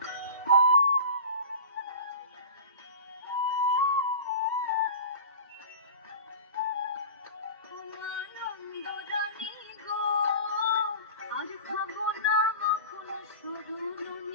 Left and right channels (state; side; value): inverted; both; correlation -0.34